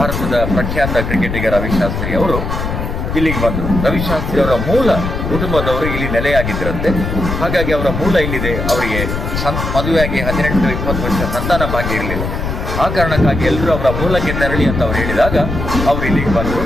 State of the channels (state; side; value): noise; left; rumble, 3 dB below the sound